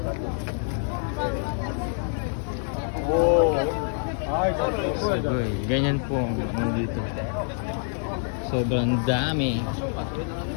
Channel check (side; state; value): right; silent; 61 dB below the other